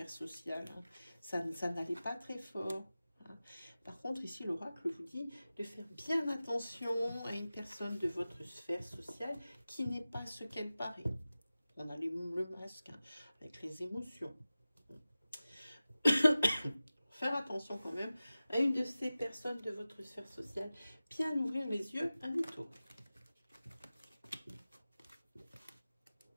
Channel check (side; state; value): both; inverted; correlation -0.96